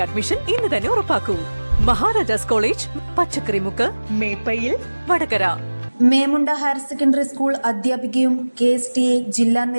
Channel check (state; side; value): inverted; both; correlation -1.00